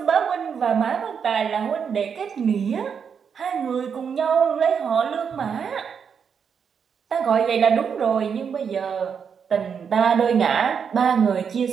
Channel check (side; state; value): left; quieter; 6.8 dB